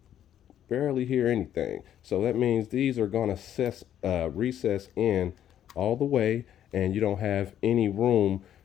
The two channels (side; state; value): right; quieter; 10.6 dB